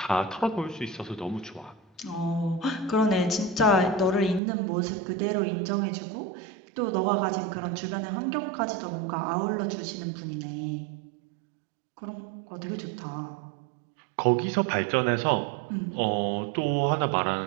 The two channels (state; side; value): drops out; left; at 4.4 s